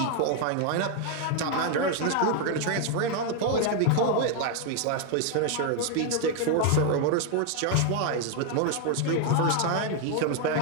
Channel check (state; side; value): different; both; correlation 0.01